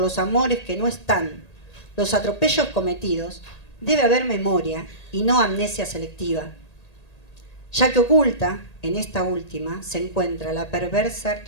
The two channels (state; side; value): late; right; 1.8 ms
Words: amores que no están, los atropellos cometidos, debe haber memoria y no amnesia selectiva, ya que oculta, en esta última, se encuentra la perversa